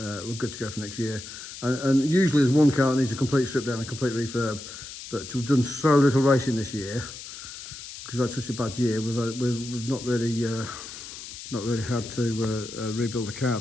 good to go for next year. And usually there's one car that needs a complete strip down and complete refurb, but we've done so little racing this year because we've had such a bad year. We've not really had to rebuild a car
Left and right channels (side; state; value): left; noise; hiss, 12 dB below the sound